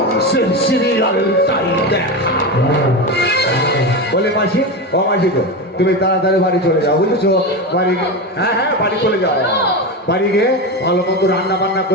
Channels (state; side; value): normal; both; correlation 0.19